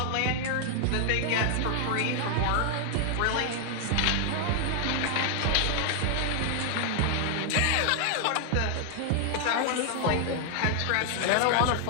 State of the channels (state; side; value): different; both; correlation 0.00